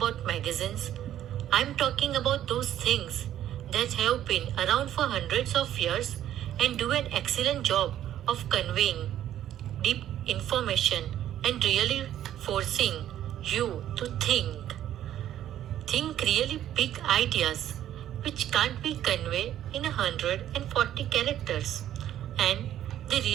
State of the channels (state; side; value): quieter; left; 11.7 dB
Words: magazines. I'm talking about those things that have been around for hundreds of years and do an excellent job of conveying deep information and really forcing you to think. Think really big ideas which can't be conveyed in 140 characters and they